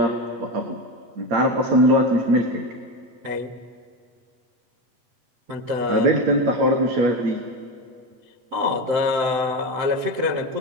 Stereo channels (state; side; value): late; left; 7.8 ms